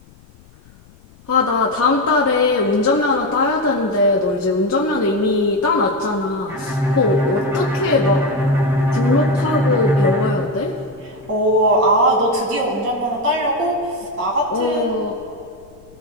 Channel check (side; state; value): left; noise; rumble, 26 dB below the sound